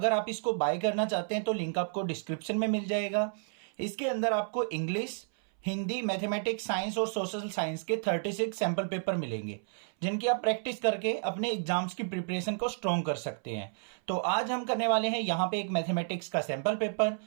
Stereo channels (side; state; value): left; silent; 57 dB below the other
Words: आप इसको बाय करना चाहते हैं तो लिंक आपको डिस्क्रिप्शन में मिल जाएगा। इसके अंदर आपको इंग्लिश, हिंदी, मैथमेटिक्स, साइंस और सोशल साइंस के 36 सैम्पल पेपर मिलेंगे, जिनकी आप प्रैक्टिस करके अपने एग्जाम्स की प्रिपरेशन को स्ट्रॉन्ग कर सकते हैं। तो आज हम करने वाले हैं यहाँ पे एक मैथमेटिक्स का सैम्पल पेपर।